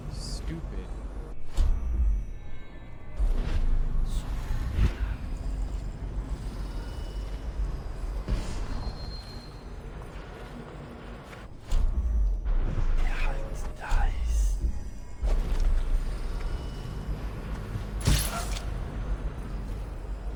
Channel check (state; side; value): identical; both; correlation 1.00